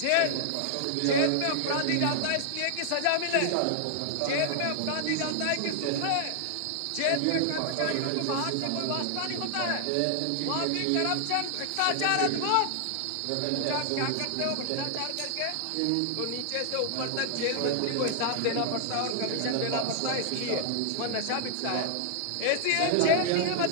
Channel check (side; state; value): both; different; correlation 0.00